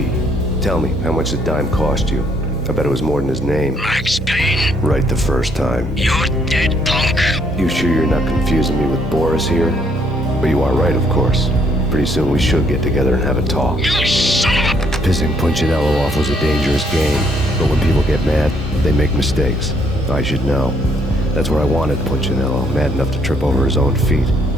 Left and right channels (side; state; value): both; normal; correlation 0.68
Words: tell me, how much did Dime cost you? I bet it was more than his name. Max Payne, Right the first time. you're dead, punk. You sure you're not confusing me with Boris here? But you are right, of course. Pretty soon we should get together and have a talk. You son of a... Pissing Punchinello off was a dangerous game, but when people get mad, they make mistakes. I should know. That's where I wanted Punchinello, mad enough to trip over his own feet,